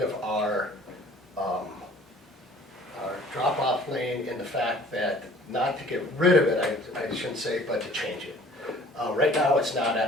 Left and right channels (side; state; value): both; normal; correlation 0.51